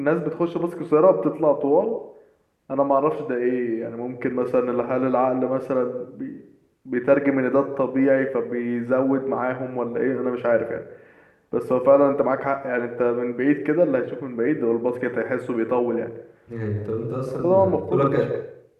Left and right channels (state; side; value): identical; both; correlation 1.00